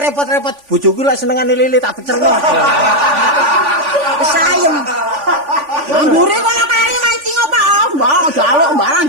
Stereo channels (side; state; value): left; late; 3.5 ms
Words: Bojoku lek senengane lele tak becerno. Wis ayem. Ambure kono kari mancing apa? Mbak, jaluk